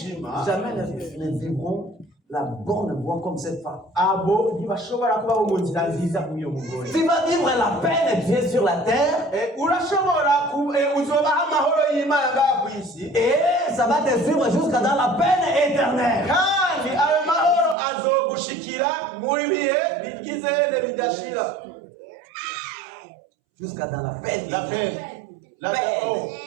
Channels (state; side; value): drops out; left; at 17.8 s